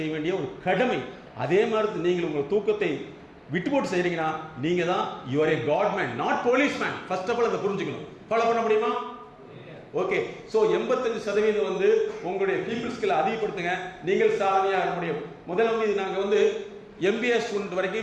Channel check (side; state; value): both; identical; correlation 1.00